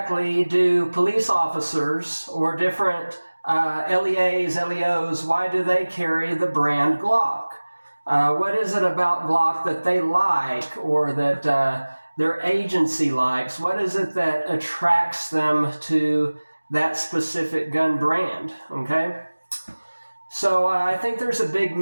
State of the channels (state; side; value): inverted; both; correlation -1.00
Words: do police officers or different LEAs, LEOs, why do they carry the brand Glock? What is it about Glock that they like or that their agency likes? What is it that attracts them to that specific gun brand? Okay, so I think there's a big